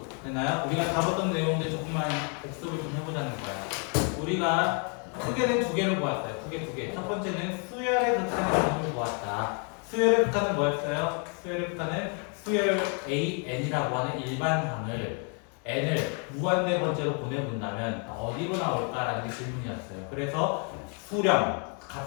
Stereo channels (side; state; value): right; quieter; 37.9 dB